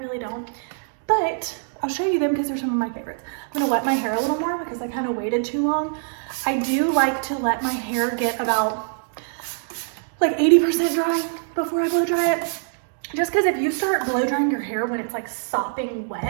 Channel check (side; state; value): left; silent; digital silence